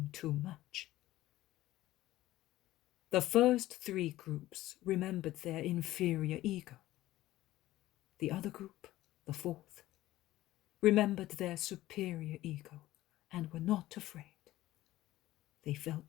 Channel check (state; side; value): quieter; right; 15.8 dB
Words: too much. The first 3 groups remembered their inferior ego. The other group, the 4th, remembered their superior ego and were not afraid. They